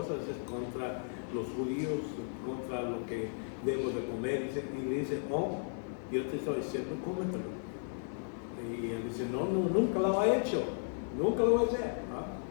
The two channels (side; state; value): right; silent; 54 dB below the other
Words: es contra los judíos, contra lo que debo de comer. Y le dice, oh, yo te estoy diciendo, cómetelo. Y él dice, no, nunca lo he hecho, nunca lo voy a hacer.